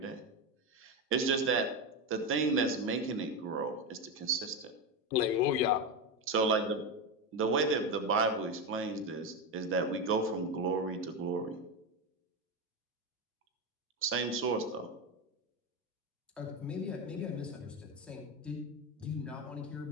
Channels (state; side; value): normal; both; correlation 0.14